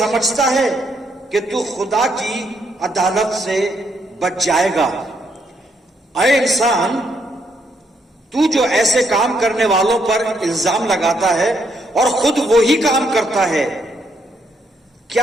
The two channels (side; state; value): both; normal; correlation 0.74